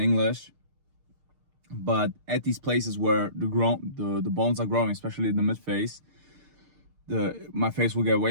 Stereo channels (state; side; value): late; left; 6.6 ms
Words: But at these places where the bones are growing, especially in the mid face, my face will get